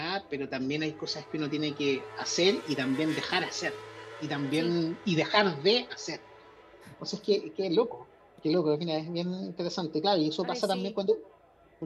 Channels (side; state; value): both; identical; correlation 1.00